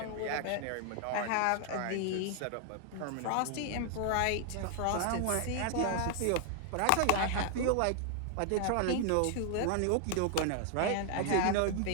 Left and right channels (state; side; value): different; both; correlation 0.00